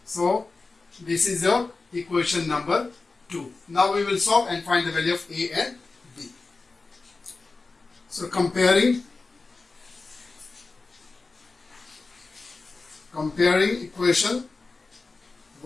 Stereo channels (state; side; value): quieter; right; 3.8 dB